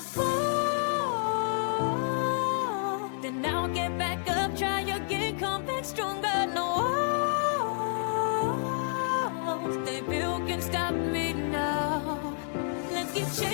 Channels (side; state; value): right; silent; 57 dB below the other